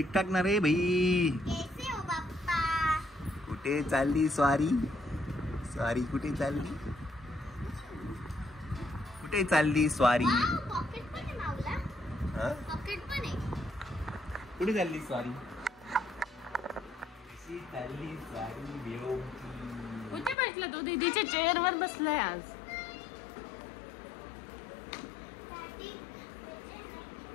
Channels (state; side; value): drops out; right; at 20.4 s